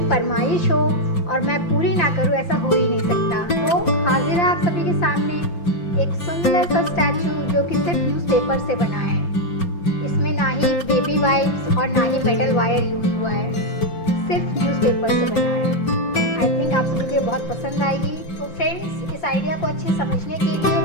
फरमाइश हो और मैं पूरी ना करूँ, ऐसा हो ही नहीं सकता। तो हाजिर है आप सभी के सामने एक सुंदर सा स्टैचू जो कि सिर्फ न्यूज़पेपर से बना है। इसमें ना ही बेबी वाइप्स और ना ही मेटल वायर यूज़ हुआ है, सिर्फ न्यूज़पेपर से बना है। आई थिंक आप सभी को बहुत पसंद आएगी। तो फ्रेंड्स, इस आइडिया को अच्छे समझने के लिए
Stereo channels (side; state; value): right; late; 5.8 ms